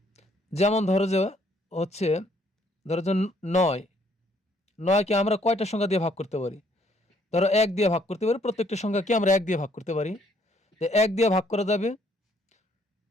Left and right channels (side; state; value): both; normal; correlation 0.66